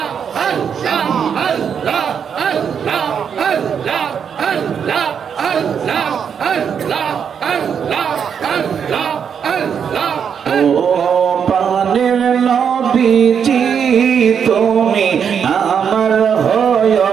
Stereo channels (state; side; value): quieter; left; 7.4 dB